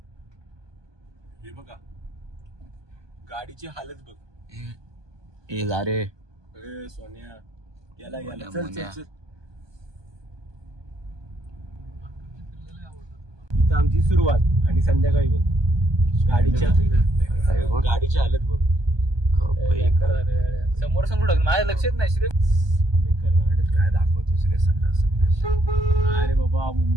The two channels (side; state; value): left; late; 1.2 ms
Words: हे बघा गाडीची हालत बघ. ए जा रे. अरे सोन्या याला चल. इथं आमची सुरुवात आणि संध्याकाळी बघ गाडीच्या हालत बघ. समोर माझ्या लक्षात नाही. श्री काय दाखवतोस रे सगळं. अरे बाबा